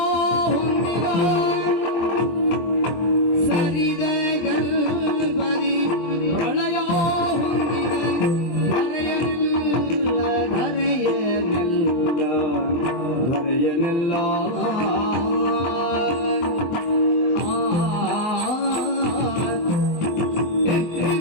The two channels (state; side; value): late; right; 24 ms